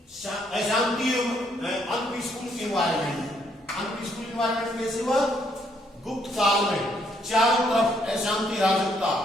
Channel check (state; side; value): normal; both; correlation 0.71